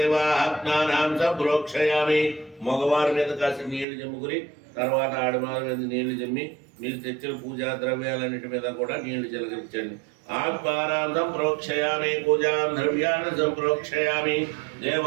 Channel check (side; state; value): left; drops out; at 3.9 s